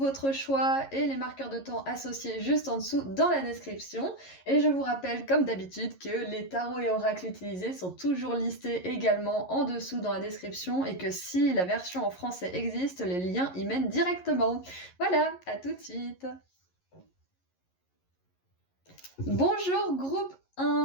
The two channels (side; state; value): right; late; 11 ms